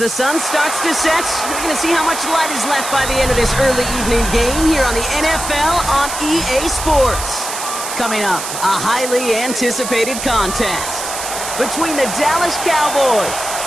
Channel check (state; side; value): noise; right; hiss, 6 dB below the sound